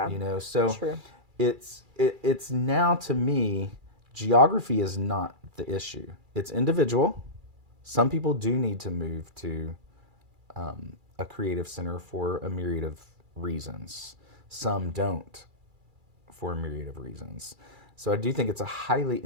So true. It's now, to me, geography is not the issue. It's individual. Some people do need to move to a creative center for a myriad of reasons. Some don't for a myriad of reasons. So I do think it's a highly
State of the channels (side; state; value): left; late; 2.3 ms